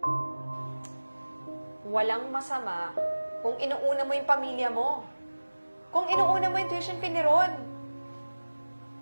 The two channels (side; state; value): both; inverted; correlation -1.00